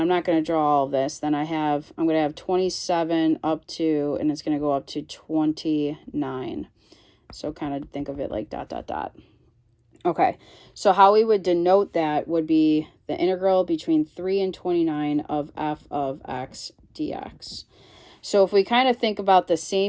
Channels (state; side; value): identical; both; correlation 1.00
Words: not going to draw all of this. Then I'm going to have 27 up to, and it's going to go up to 29. So kind of think of it like ... Okay, so how we would denote that would be the integral between 3 and 29 of f of x dx. So if we kind of think about the